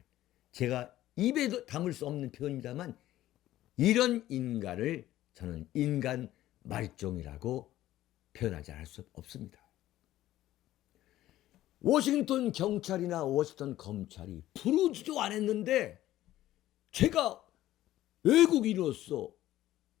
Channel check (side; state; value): right; quieter; 14.3 dB